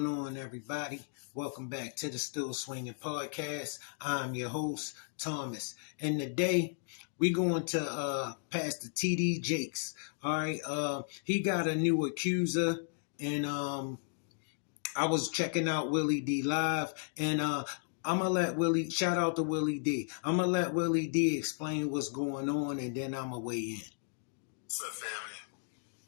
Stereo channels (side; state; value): right; silent; digital silence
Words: on, everybody? Welcome back to the Still Swinging Podcast. I'm your host, Thomas. And today we're going to Pastor TD Jakes. All right. He got a new accuser, and I was checking out Willie D live, and I'm gonna let Willie shout out to Willie D. I'm gonna let Willie D explain what's going on, and then I'm gonna weigh in. What's up, family?